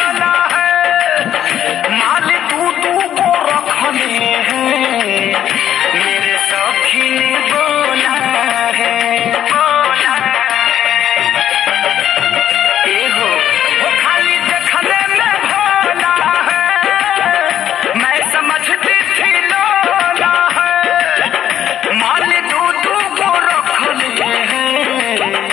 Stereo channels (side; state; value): right; quieter; 10.7 dB